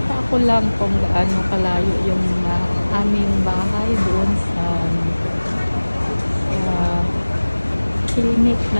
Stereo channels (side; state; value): both; inverted; correlation -1.00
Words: ko lang kung gaano kalayo yung aming bahay doon sa clinic